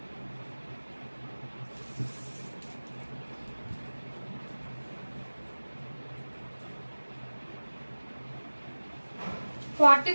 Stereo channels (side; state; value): both; inverted; correlation -1.00